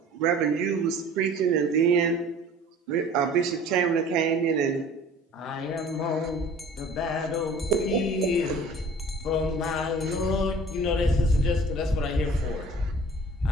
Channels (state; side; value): normal; both; correlation 0.47